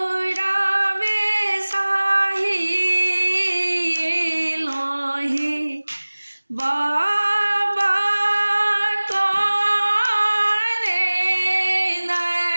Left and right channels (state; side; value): inverted; both; correlation -1.00